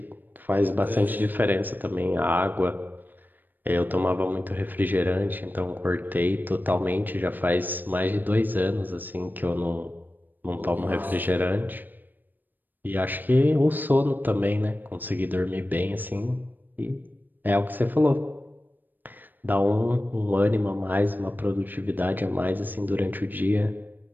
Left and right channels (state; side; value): late; left; 0.089 ms